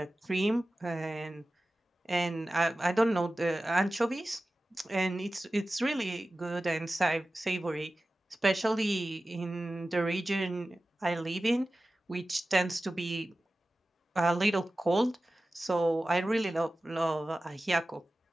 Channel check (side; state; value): both; normal; correlation 0.95